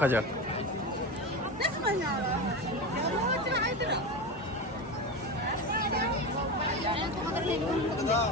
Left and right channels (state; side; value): normal; both; correlation 0.22